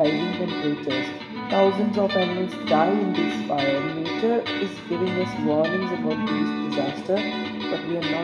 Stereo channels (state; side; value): identical; both; correlation 1.00